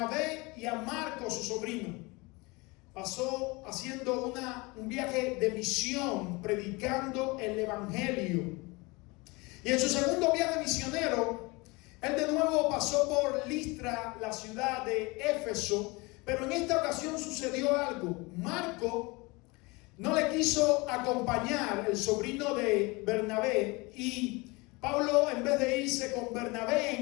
y a Marcos, su sobrino. Pasó haciendo un viaje de misión, predicando el evangelio. Y en su segundo viaje misionero, él de nuevo pasó por Listra, la ciudad de Éfeso, pero en esta ocasión sucedió algo. Marco no le quiso acompañar, el sobrino de Bernabé, y Pablo, en vez de irse con Bernabé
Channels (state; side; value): quieter; right; 25.4 dB